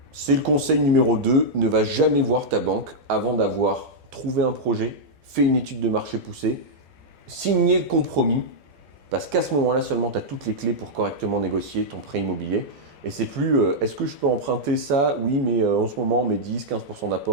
C'est le conseil numéro 2, ne va jamais voir ta banque avant d'avoir trouvé un projet, fait une étude de marché poussée, signé le compromis, parce qu'à ce moment-là seulement tu as toutes les clés pour correctement négocier ton prêt immobilier. Et c'est plus est-ce que je peux emprunter ça? Oui, mais en ce moment, mes 10-15%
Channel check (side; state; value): left; late; 12 ms